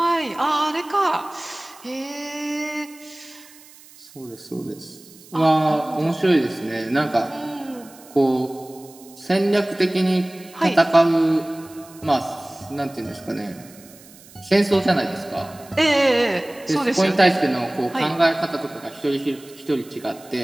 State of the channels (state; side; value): noise; right; hiss, 23 dB below the sound